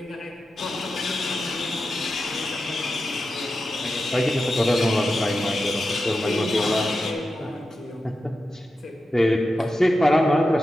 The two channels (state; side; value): normal; both; correlation 0.90